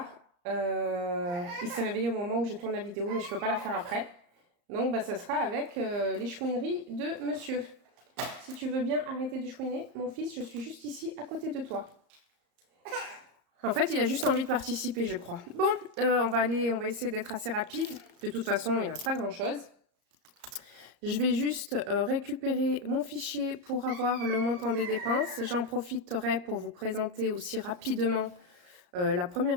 Il s'est réveillé au moment où je tourne la vidéo, mais je ne peux pas la faire après. Donc bah, ça sera avec les chouineries de monsieur. Si tu veux bien arrêter de chouiner, mon fils, je suis juste ici à côté de toi. En fait, il a juste envie de participer, je crois. Bon, on va essayer d'être assez rapide. De toute façon, il ne reste pas grand-chose. Je vais juste récupérer mon fichier pour avoir le montant des dépenses. J'en profiterai pour vous présenter aussi rapidement la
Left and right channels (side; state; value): left; late; 34 ms